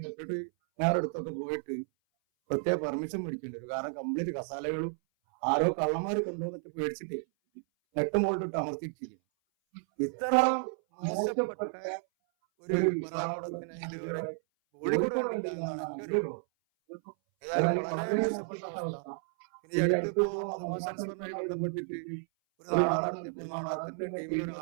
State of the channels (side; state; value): left; silent; 56 dB below the other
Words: എപ്പോഴും ഞാൻ എടുത്തോട്ട് പോയിട്ട് പ്രത്യേക പെർമിഷൻ മേടിക്കുന്നുണ്ട്. കാരണം കംപ്ലീറ്റ് കസാലകളും ആരോ കള്ളന്മാര് കൊണ്ടുവന്നിട്ട് മേടിച്ചിട്ട് വ്യക്തമായിട്ട് താമസിക്കുന്നു. ഇത്ര മോശപ്പെട്ട ഒരു വിഭാഗത്തിന് കോഴിക്കോട് കണ്ടില്ല എന്നാണ് എന്റെ ഒരു അതായത് വളരെ മോശപ്പെട്ട അവസ്ഥ. ഇനി അടുത്തിപ്പോ മതമാസങ്ങളുമായി ബന്ധപ്പെട്ടിട്ട് ഒരു നാടകം നടത്തിയപ്പോ നാടകത്തിന്റെ ചെയ്യുന്ന